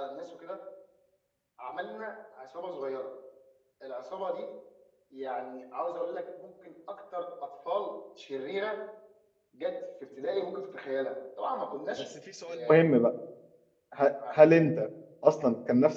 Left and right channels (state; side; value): identical; both; correlation 1.00